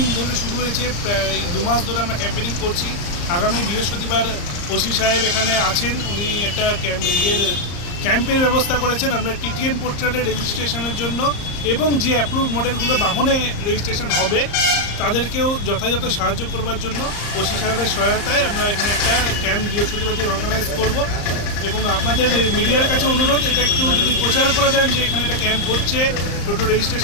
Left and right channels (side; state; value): right; late; 34 ms